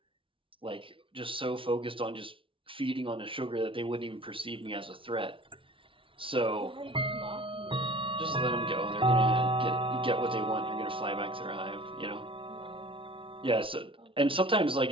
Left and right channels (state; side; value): late; left; 0.25 ms